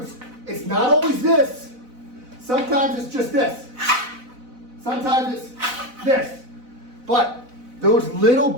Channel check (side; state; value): left; late; 4.0 ms